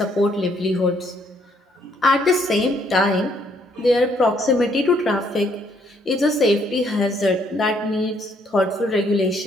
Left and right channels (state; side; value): normal; both; correlation 0.68